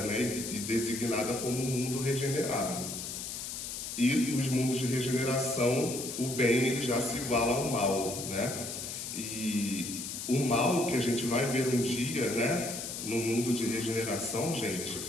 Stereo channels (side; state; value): left; noise; hiss, 6 dB below the sound